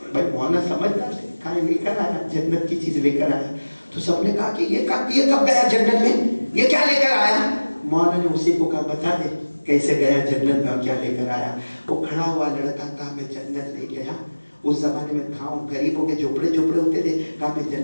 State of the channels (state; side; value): inverted; both; correlation -1.00